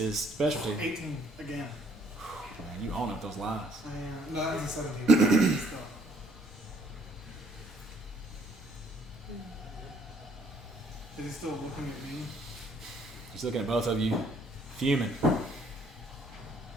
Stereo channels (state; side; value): normal; both; correlation 0.64